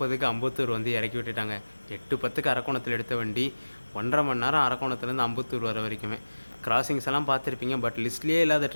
அம்பத்தூர் வந்து இறக்கி விட்டுட்டாங்க. 8:10க்கு அரக்கோணத்தில் எடுத்த வண்டி 1.5 மணி நேரம் அரக்கோணத்துலேருந்து அம்பத்தூர் வர வரைக்குமே. கிராசிங்ஸ் எல்லாம் பார்த்துருப்பீங்க, பட் லிஸ்ட்லேயே இல்லாத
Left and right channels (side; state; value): both; inverted; correlation -1.00